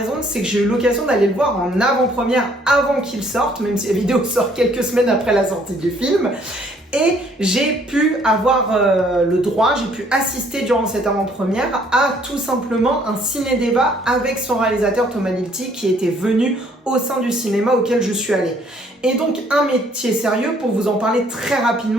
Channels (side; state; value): both; normal; correlation 0.63